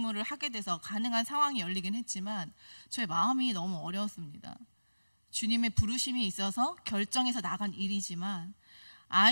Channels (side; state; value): both; inverted; correlation -1.00